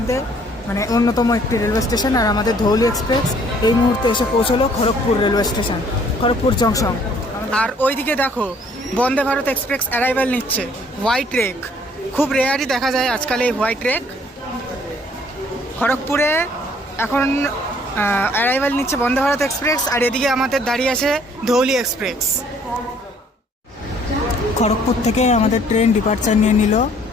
মানে অন্যতম একটি রেলওয়ে স্টেশন। আর আমাদের ধৌলি এক্সপ্রেস এই মুহূর্তে এসে পৌঁছলো Kharagpur railway station, Kharagpur junction. আর ওইদিকে দেখো বন্দে ভারত এক্সপ্রেস অ্যারাইভাল নিচ্ছে, হোয়াইট রেক। খুব রেয়ারই দেখা যায় আজকাল এই হোয়াইট রেক। খড়গপুরে এখন অ্যারাইভাল নিচ্ছে বন্দে ভারত এক্সপ্রেস, আর এদিকে আমাদের দাঁড়িয়ে আছে ধৌলি এক্সপ্রেস। খড়গপুর থেকে আমাদের ট্রেন ডিপার্চার নিয়ে নিল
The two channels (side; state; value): both; normal; correlation 0.60